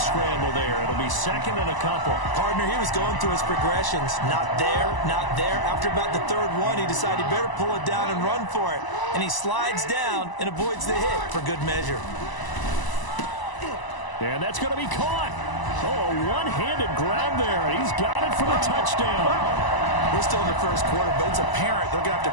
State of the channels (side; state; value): right; late; 1.0 ms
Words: there. It'll be 2nd and a couple. Partner, he was going through his progressions. Not there, not there. After about the 3rd one, he decided he better pull it down and run for it. And he slides down and avoids the hit for good measure. And that's going to be caught. Oh, a one-handed grab there. He's got it for the touchdown. We're still in the first quarter, but it's apparent they're going to have to